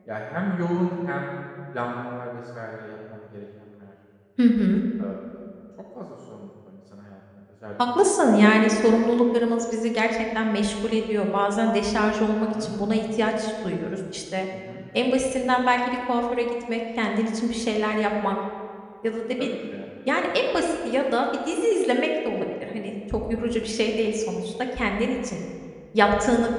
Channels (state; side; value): identical; both; correlation 1.00